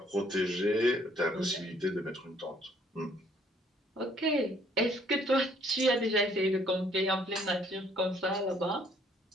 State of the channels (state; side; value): normal; both; correlation 0.63